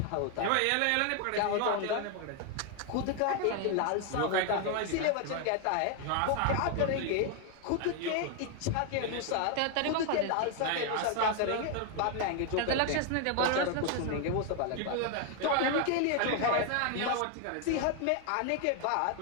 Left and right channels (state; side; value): different; both; correlation 0.01